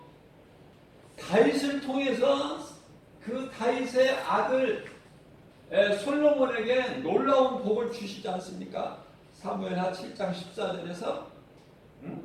다윗을 통해서 그 다윗의 아들 솔로몬에게 놀라운 복을 주시지 않습니까? 사무엘하 7장 14절에서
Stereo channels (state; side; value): identical; both; correlation 1.00